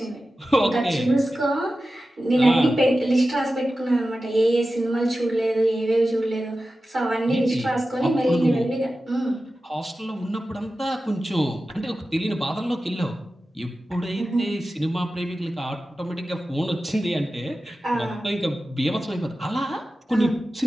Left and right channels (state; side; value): normal; both; correlation 0.93